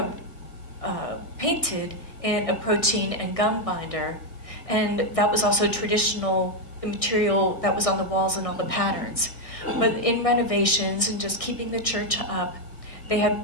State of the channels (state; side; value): late; right; 1.6 ms